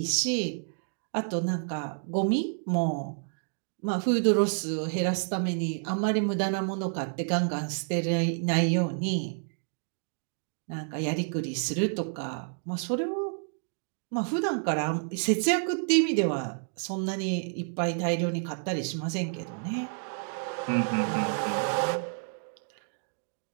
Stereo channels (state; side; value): silent; left; 58 dB below the other